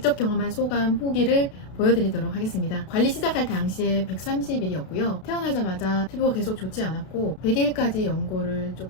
경험한 소감, 후기를 보여드리도록 하겠습니다. 관리 시작할 당시에 130일이었고요. 태어나자마자 피부가 계속 좋지 않았고 100일까지 연고를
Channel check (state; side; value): late; right; 32 ms